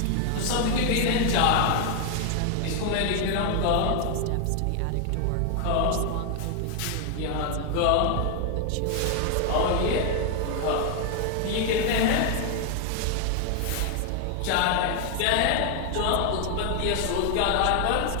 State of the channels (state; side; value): different; both; correlation 0.00